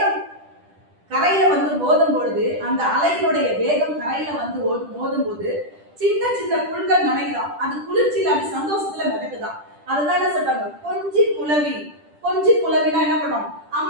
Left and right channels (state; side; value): late; left; 10 ms